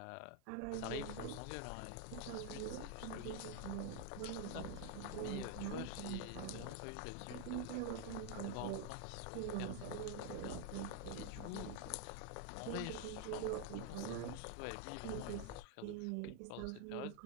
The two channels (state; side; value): different; both; correlation 0.00